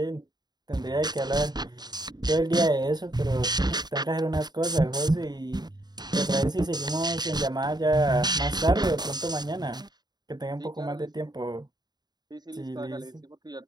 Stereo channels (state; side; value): late; left; 0.20 ms